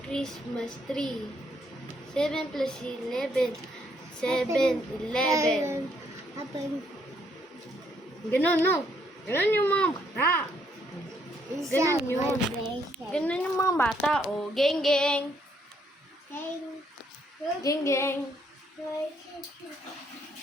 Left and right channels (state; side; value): normal; both; correlation 0.71